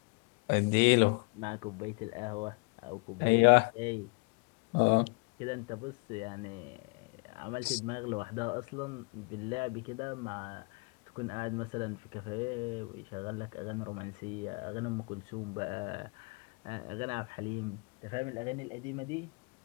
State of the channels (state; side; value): quieter; right; 30.8 dB